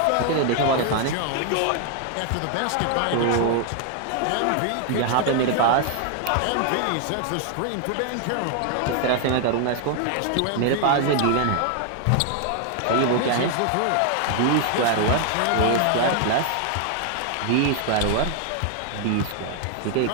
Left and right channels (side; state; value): both; different; correlation 0.00